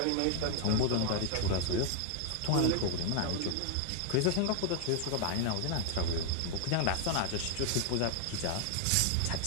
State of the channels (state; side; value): different; both; correlation 0.00